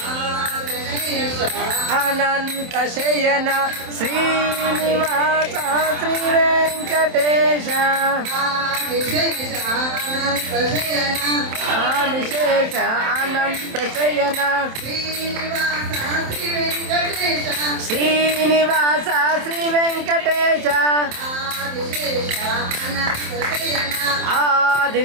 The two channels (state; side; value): late; left; 27 ms